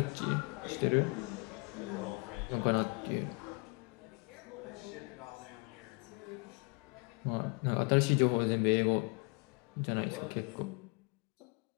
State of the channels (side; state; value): right; quieter; 32.0 dB